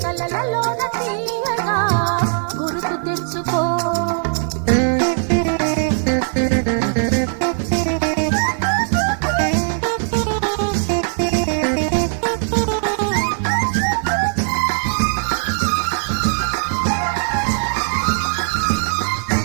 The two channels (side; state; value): left; silent; 58 dB below the other